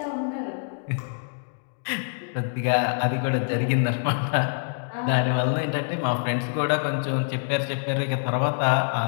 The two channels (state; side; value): silent; right; digital silence